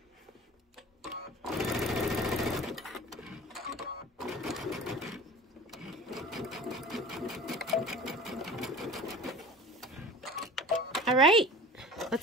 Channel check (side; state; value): both; normal; correlation 0.40